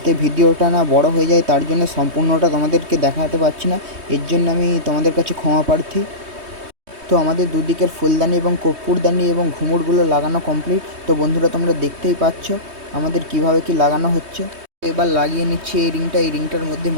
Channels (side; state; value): left; late; 3.2 ms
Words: ভিডিওটা না বড় হয়ে যায়। তার জন্য সম্পূর্ণটা তোমাদেরকে দেখাতে পারছি না, এর জন্য আমি তোমাদের কাছে ক্ষমা প্রার্থী। তো আমাদের দুদিকের ফুলদানি এবং কর্পূরদানি এবং ঘুঙুরগুলো লাগানো কমপ্লিট। তো বন্ধুরা তোমরা দেখতেই পাচ্ছ আমাদের কিভাবে কি লাগানো হচ্ছে। এবার লাগিয়ে নিচ্ছি এই রিংটা। এই রিংটার মধ্যে